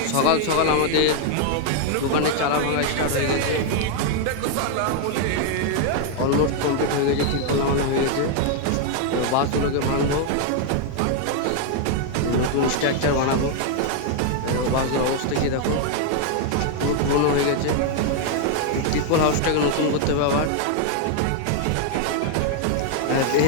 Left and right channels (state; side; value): different; both; correlation 0.00